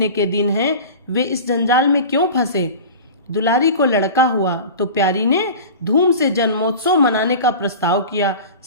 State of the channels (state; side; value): inverted; both; correlation -0.34